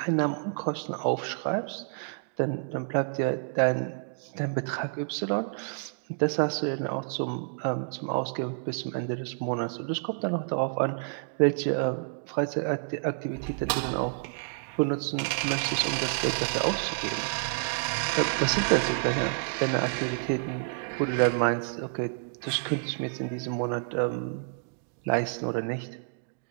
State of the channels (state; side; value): silent; left; digital silence